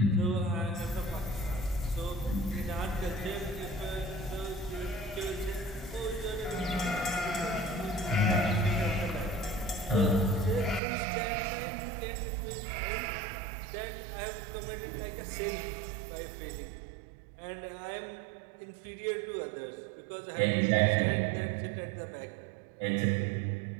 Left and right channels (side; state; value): left; drops out; at 10.8 s